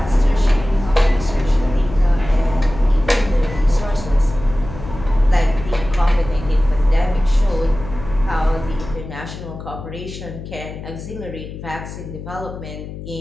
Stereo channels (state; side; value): noise; left; hum, 11 dB below the sound